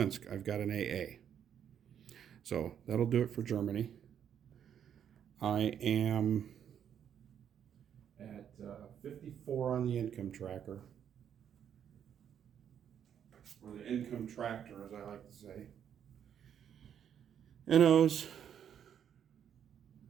I've got an AA. So that'll do it for Germany. I am at 54 on the income tracker, or the income tractor, as I like to say. NO's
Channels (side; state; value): left; quieter; 8.9 dB